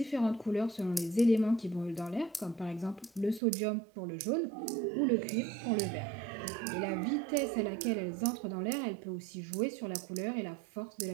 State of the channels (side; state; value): left; drops out; at 3.4 s